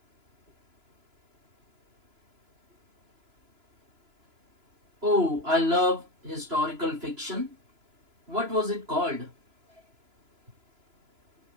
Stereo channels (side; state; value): left; late; 2.9 ms